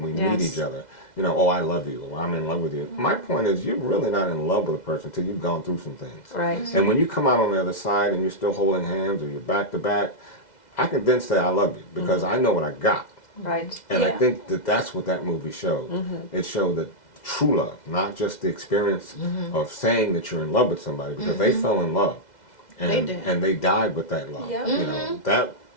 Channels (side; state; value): right; late; 2.0 ms